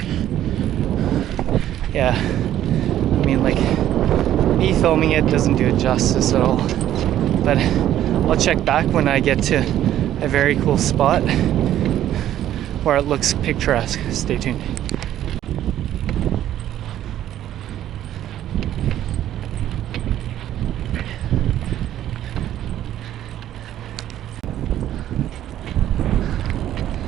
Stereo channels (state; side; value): quieter; left; 12.0 dB